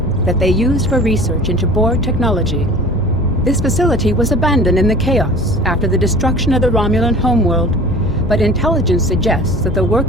that they used for research into Borg technology. This facility was abandoned in the chaos after the destruction of the Romulan homeworld, but intelligence suggests that the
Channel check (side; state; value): both; normal; correlation 0.43